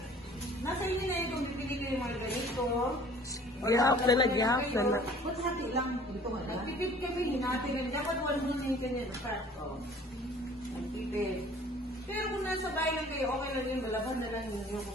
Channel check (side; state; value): both; normal; correlation 0.51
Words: nasa inyo na yun kung bibili kayo yung mga ganito. Gihap na na. Ba't hati lang? Ito nga lang. Nagpipid kami, hinati rin. Dapat wala mo yung kanya na fat. Nagpipid. Pero kung nasa bahay lang kayo, okay lang yun. Malaban na lang ninyo